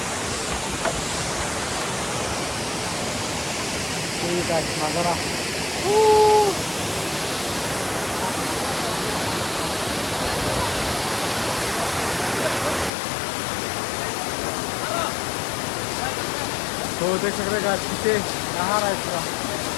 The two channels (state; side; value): drops out; right; at 12.9 s